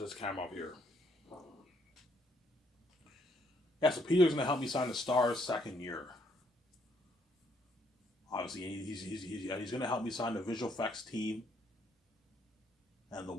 camera off here. Yeah, so Peter's going to help me sign the Stars second year. Obviously, he's going to help me sign the visual effects team and the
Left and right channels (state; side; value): normal; both; correlation 0.70